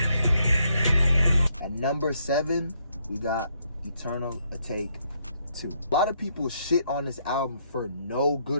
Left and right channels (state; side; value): inverted; both; correlation -0.74